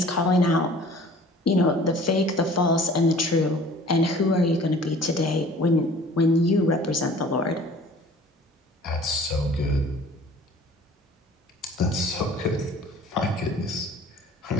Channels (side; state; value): both; normal; correlation 0.49